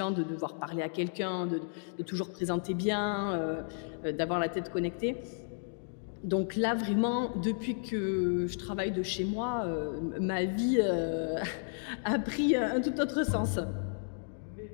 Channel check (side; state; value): right; silent; digital silence